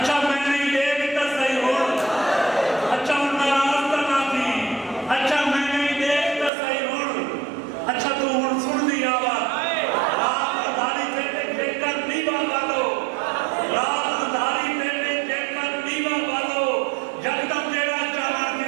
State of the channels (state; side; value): drops out; left; at 6.5 s